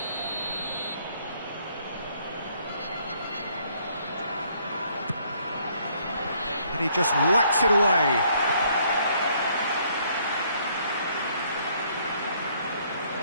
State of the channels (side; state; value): both; inverted; correlation -0.66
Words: And he just whacks it away.